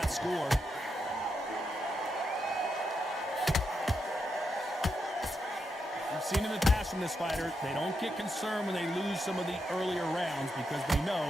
score. We've seen in the past from this fighter, they don't get concerned when they lose some of the earlier rounds because they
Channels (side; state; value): both; normal; correlation 0.84